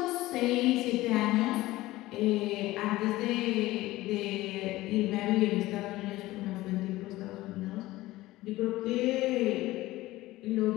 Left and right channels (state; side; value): quieter; right; 17.8 dB